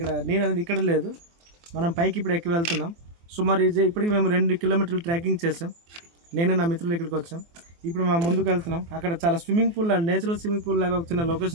ఇక్కడ నీరు అనేది ఇక్కడ లేదు. మనం పైకి ఇప్పుడు ఎక్కి వెళ్తున్నాం. సుమారు ఇప్పటికి మేము 2 కిలోమీటర్లు ట్రెక్కింగ్ చేసాం. నేను నా మిత్రులు ఇక్కడికి వచ్చాం. ఇప్పుడు మేము ముందుకు వెళ్తున్నాం. అక్కడ చాలా swimming pool, natural swimming pool లాగా ఒక చిన్న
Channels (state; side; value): late; left; 24 ms